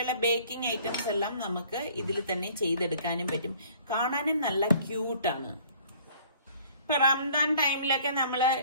ബേക്കിംഗ് ഐറ്റംസ് എല്ലാം നമുക്ക് ഇതിൽ തന്നെ ചെയ്തെടുക്കാനും പറ്റും. കാണാനും നല്ല ക്യൂട്ടാണ്. ഇപ്പൊ റംദാൻ ടൈമിലൊക്കെ നമ്മൾ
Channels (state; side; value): inverted; both; correlation -0.55